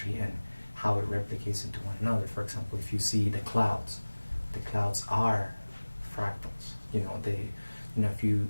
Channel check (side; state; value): both; inverted; correlation -1.00